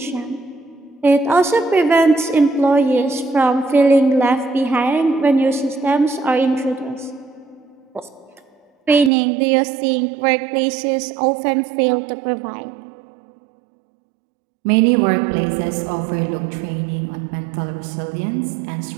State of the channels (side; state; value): left; drops out; at 9.1 s